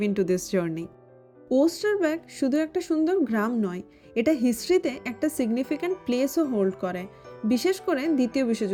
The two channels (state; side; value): identical; both; correlation 1.00